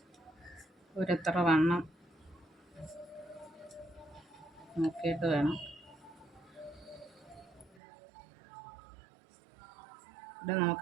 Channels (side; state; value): left; drops out; at 7.8 s